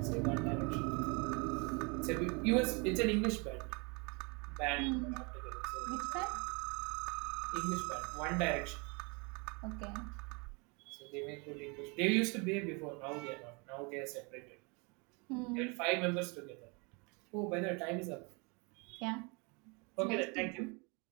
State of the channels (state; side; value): quieter; left; 30.8 dB